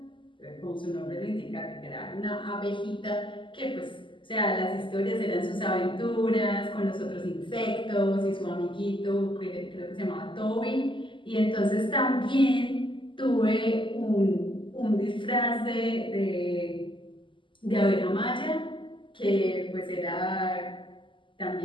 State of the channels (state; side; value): late; right; 0.24 ms